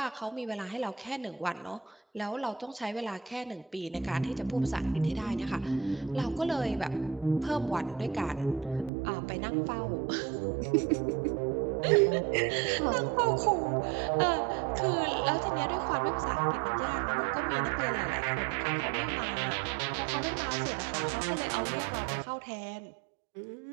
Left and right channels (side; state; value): left; drops out; at 8.9 s